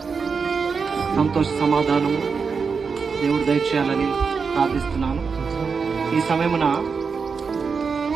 సంతోష సమాధానము దేవుడు దయచేయాలని ప్రార్థిస్తున్నాను. ఈ సమయమున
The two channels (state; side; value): quieter; left; 5.4 dB